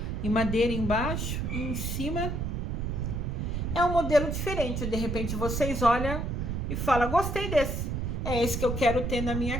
Em madeira embaixo e em cima é um modelo diferente. De repente vocês olham e falam, gostei desse. É esse que eu quero ter na minha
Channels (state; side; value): noise; right; rumble, 2 dB below the sound